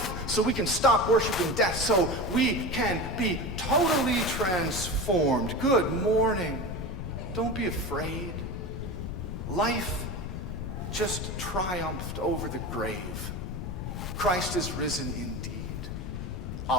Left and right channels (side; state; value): left; noise; rumble, 5 dB below the sound